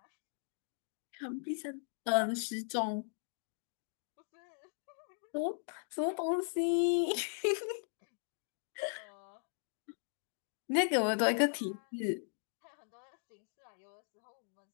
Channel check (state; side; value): silent; right; digital silence